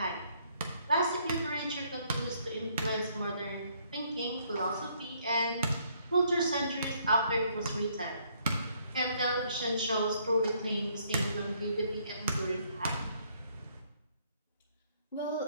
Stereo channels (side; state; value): both; inverted; correlation -0.68